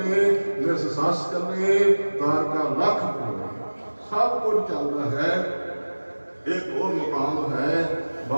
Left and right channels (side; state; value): both; inverted; correlation -1.00